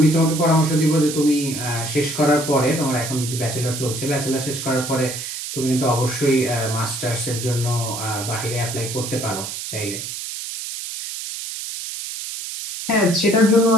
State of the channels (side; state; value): right; noise; hiss, 7 dB below the sound